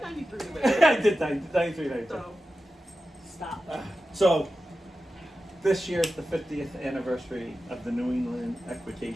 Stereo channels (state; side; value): normal; both; correlation 0.93